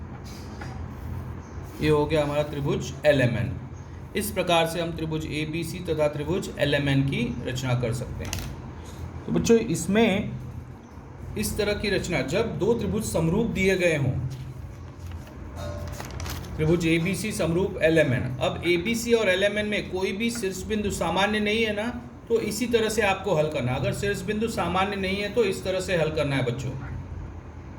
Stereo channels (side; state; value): both; identical; correlation 1.00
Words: ये हो गया हमारा त्रिभुज LMN। इस प्रकार से हम त्रिभुज ABC तथा त्रिभुज LMN की रचना कर सकते हैं। तो बच्चों इसमें इस तरह की रचना, जब दो त्रिभुज समरूप दिए गए हों, त्रिभुज ABC समरूप LMN, अब ABC और LMN में कोई भी शीर्ष बिंदु सामान्य नहीं है ना, तो इसी तरह से आपको हल करना। अगर शीर्ष बिंदु सामान्य नहीं है तो इस तरह से हल करना है बच्चों,